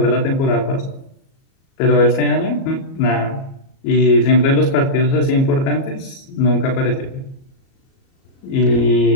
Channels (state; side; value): late; right; 37 ms